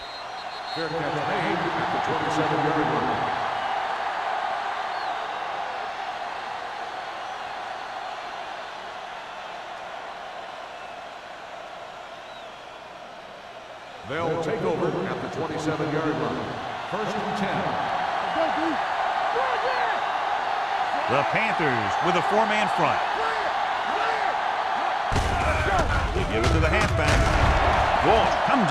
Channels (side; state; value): both; identical; correlation 1.00